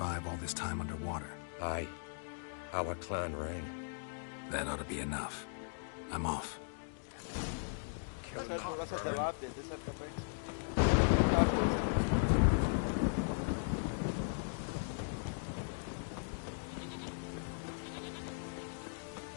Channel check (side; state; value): right; silent; digital silence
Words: all this time underwater? Aye. Our clan ring. That ought to be enough. I'm off.